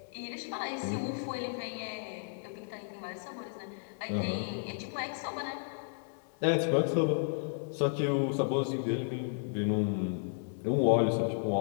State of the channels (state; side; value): silent; right; digital silence